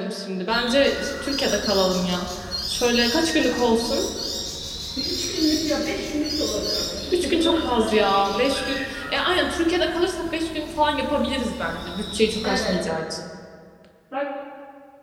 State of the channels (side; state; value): both; identical; correlation 1.00